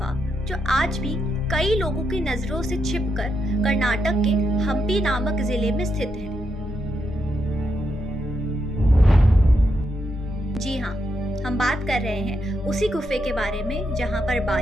जो आज भी कई लोगों की नजरों से छिपकर कर्नाटक के हम्पी नामक जिले में स्थित है। जी हाँ, हम बात कर रहे हैं उसी गुफे के बारे में जहाँ पर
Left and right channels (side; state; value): both; normal; correlation 0.82